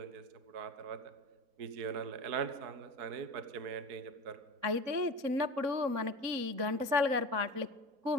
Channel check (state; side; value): late; left; 3.6 ms